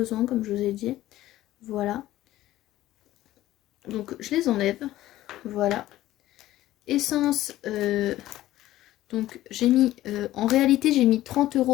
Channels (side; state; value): right; quieter; 15.0 dB